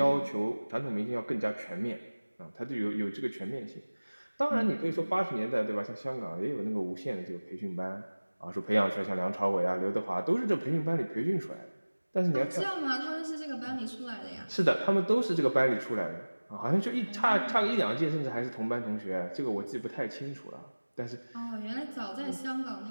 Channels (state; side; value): inverted; both; correlation -1.00